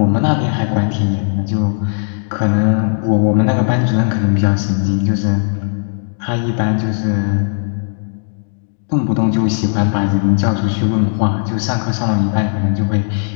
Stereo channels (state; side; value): silent; right; 65 dB below the other